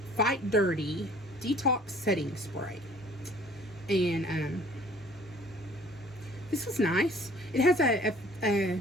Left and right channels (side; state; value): both; normal; correlation 0.53